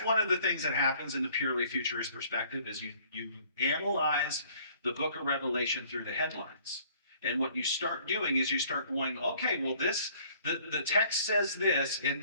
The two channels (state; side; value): inverted; both; correlation -0.57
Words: one of the things that happens in the purely futurist perspective is you analyze the book of Revelation through the headlines. And what you start doing is you start going, okay, well, the text says this, and